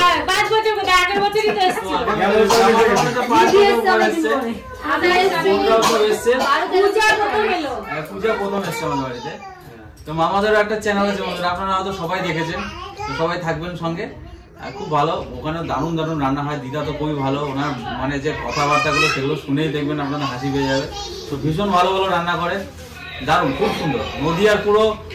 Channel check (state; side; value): identical; both; correlation 1.00